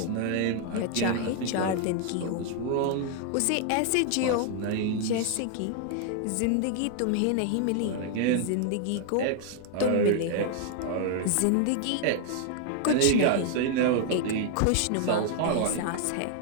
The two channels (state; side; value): different; both; correlation 0.00